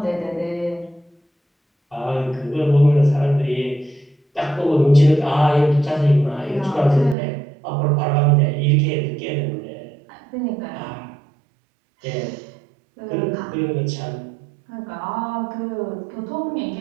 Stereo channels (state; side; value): drops out; left; at 7.2 s